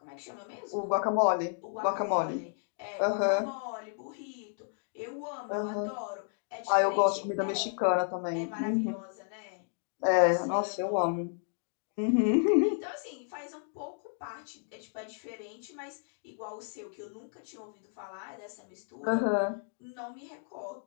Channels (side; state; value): right; silent; digital silence